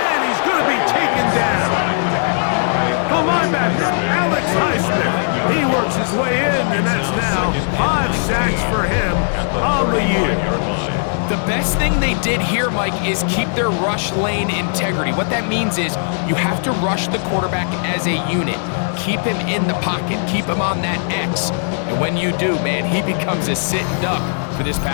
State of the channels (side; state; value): right; silent; digital silence